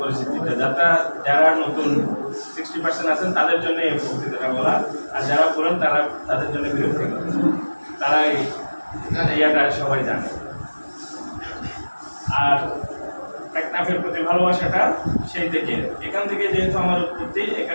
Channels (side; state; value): both; inverted; correlation -1.00